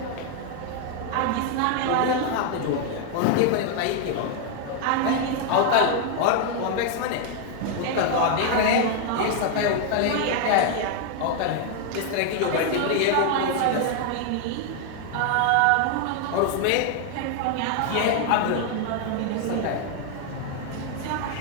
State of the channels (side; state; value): both; different; correlation 0.00